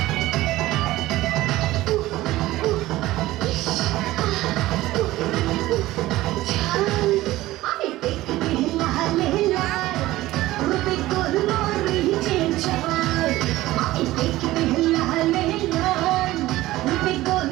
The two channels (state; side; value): quieter; left; 16.9 dB